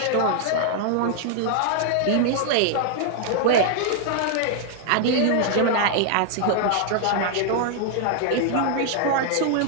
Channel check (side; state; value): both; different; correlation 0.00